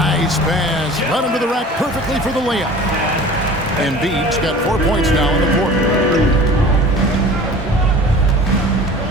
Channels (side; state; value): both; normal; correlation 0.42